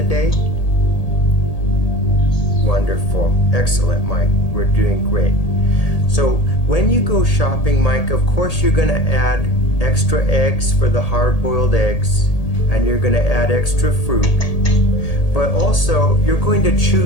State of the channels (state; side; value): late; right; 1.8 ms